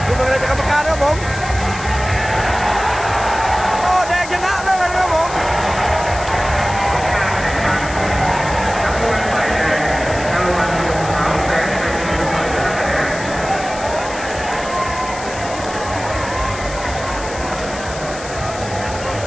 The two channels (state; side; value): noise; left; hiss, 13 dB below the sound